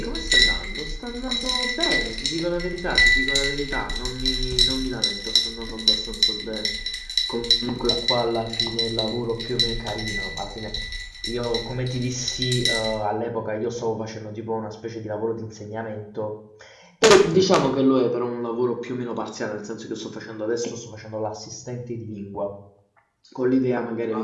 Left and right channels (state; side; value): identical; both; correlation 1.00